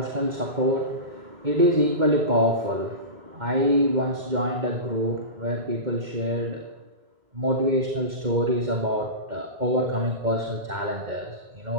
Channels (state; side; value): late; left; 2.1 ms